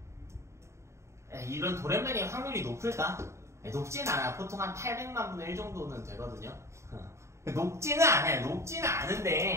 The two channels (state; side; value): late; left; 0.14 ms